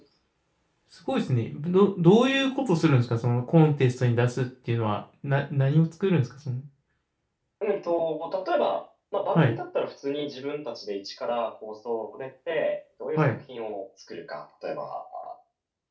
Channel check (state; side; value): identical; both; correlation 1.00